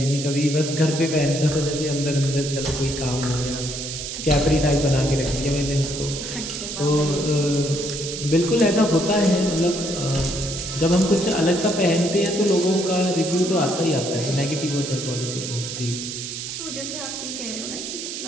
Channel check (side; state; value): right; noise; hiss, 7 dB below the sound